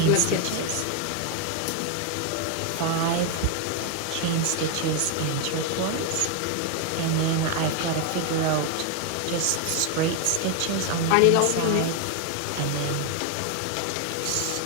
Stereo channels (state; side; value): different; both; correlation 0.01